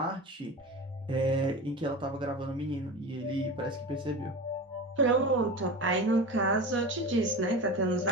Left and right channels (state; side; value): normal; both; correlation 0.29